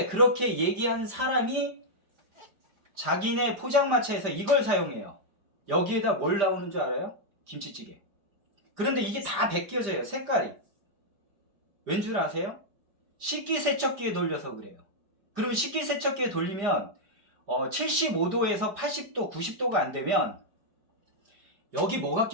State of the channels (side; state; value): left; late; 5.0 ms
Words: 그렇게 얘기한 사람이 자기네 포장마차에서 이걸 사용해요. 여기에다 뭘 나오는 줄 알아요? 김치찌개. 그런데 이게 다 벗겨져요. 색깔이. 왠 줄 아세요? 식기세척기에 돌려서 그래요. 그러면 식기세척기에 돌리면 75도에서 80도, 90도가 안 되면 여기 뭐가